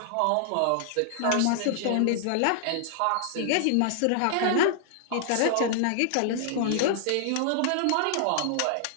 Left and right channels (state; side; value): different; both; correlation -0.01